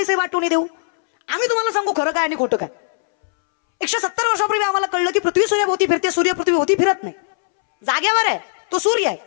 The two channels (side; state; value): right; silent; 65 dB below the other